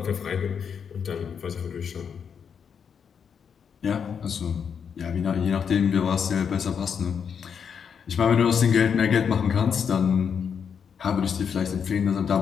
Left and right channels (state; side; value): quieter; right; 7.0 dB